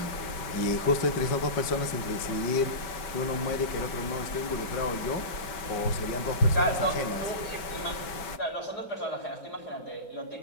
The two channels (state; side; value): late; right; 5.2 ms